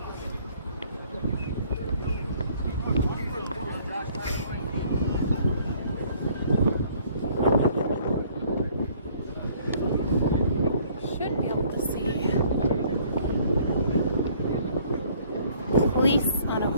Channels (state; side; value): inverted; both; correlation -0.59